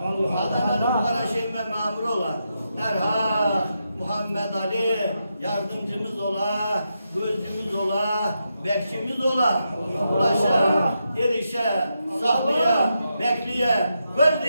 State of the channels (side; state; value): both; inverted; correlation -0.84